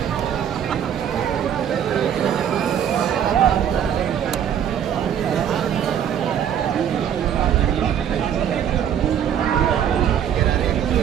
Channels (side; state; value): left; quieter; 9.2 dB